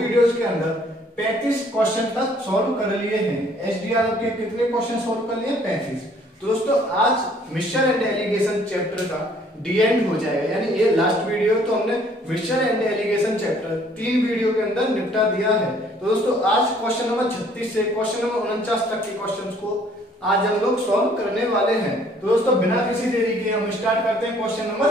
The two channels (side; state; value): both; normal; correlation 0.60